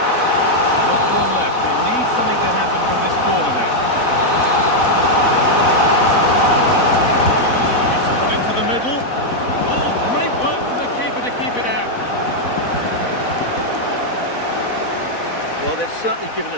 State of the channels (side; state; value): right; late; 4.1 ms